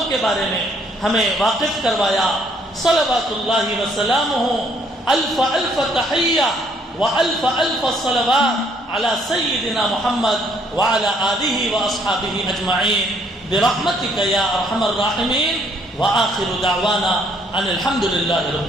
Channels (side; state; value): both; normal; correlation 0.66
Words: کے بارے میں ہمیں واقف کروایا. صلوات اللہ وسلامہ, الف الف تحیہ والف الف صلوات علی سیدنا محمد وعلی آلہ واصحابہ اجمعین برحمتک یا ارحم الراحمین. وآخر دعوانا ان الحمد للہ رب